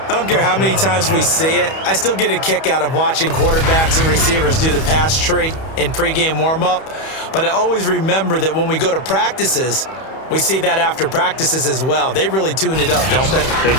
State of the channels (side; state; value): right; late; 31 ms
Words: don't care how many times we see it. I still get a kick out of watching quarterbacks and receivers do the pass tree in pregame warm-up. But I always remember that when we go to practices, we see that after practices as well. They really tune it up, don't they? They